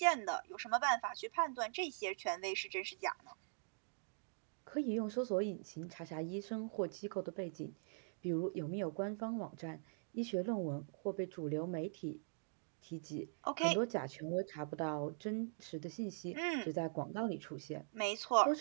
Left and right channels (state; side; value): silent; left; digital silence